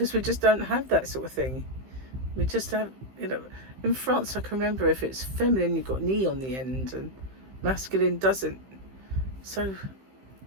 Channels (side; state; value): left; late; 15 ms